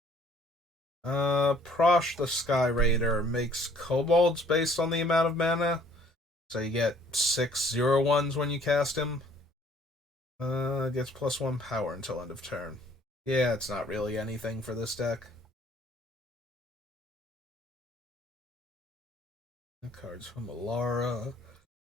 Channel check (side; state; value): both; normal; correlation 0.59